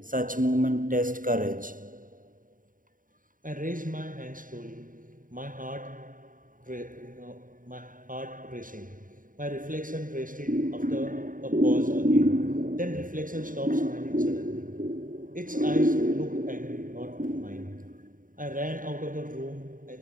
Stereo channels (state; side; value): late; left; 0.39 ms